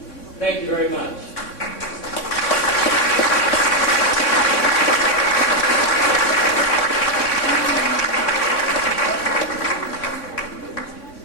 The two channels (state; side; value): late; right; 3.6 ms